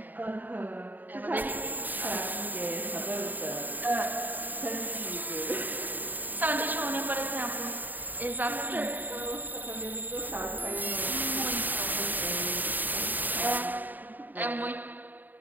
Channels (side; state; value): left; late; 0.087 ms